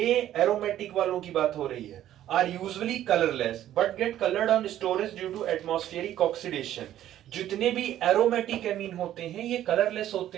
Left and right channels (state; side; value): quieter; left; 12.3 dB